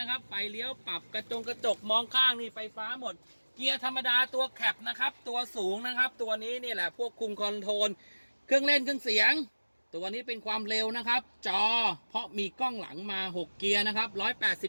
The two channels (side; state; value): both; inverted; correlation -1.00